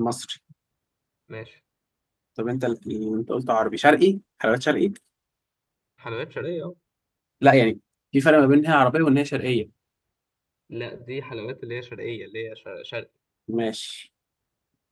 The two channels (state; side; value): identical; both; correlation 1.00